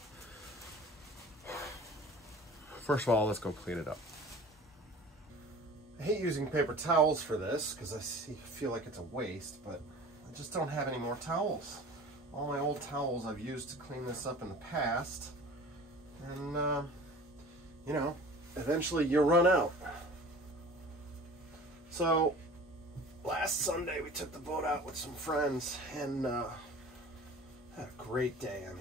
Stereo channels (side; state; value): both; normal; correlation 0.42